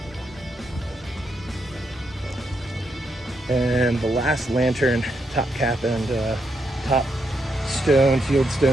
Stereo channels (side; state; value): both; normal; correlation 0.80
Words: And the last lantern, top cap and top stone,